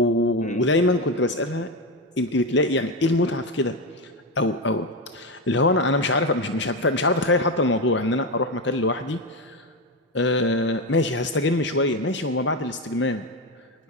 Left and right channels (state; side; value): normal; both; correlation 0.13